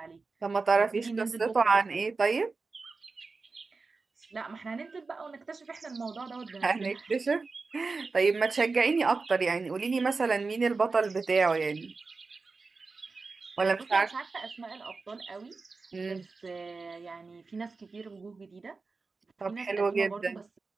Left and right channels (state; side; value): quieter; left; 4.1 dB